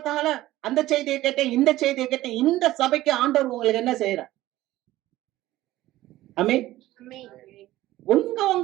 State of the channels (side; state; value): left; quieter; 16.0 dB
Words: அந்த செய்தியை கேட்டேன், இந்த செய்தியை கேட்டேன். இந்த சபைக்கு ஆண்டவர் உங்களுக்கு என்ன செய்யறார்? ஆமென்.